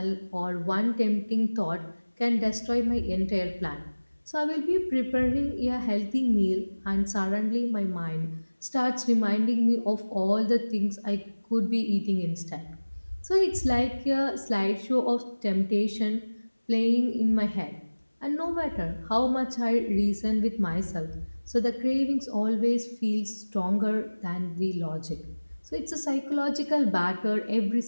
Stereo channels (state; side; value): inverted; both; correlation -1.00